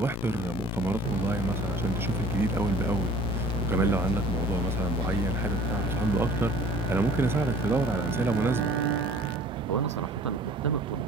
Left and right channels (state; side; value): normal; both; correlation 0.48